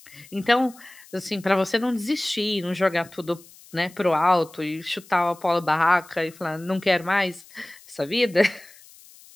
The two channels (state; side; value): noise; left; hiss, 23 dB below the sound